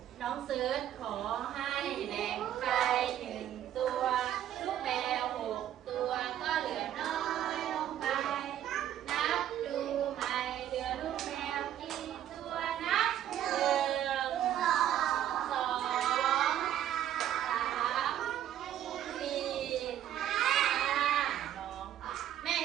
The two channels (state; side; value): quieter; left; 11.4 dB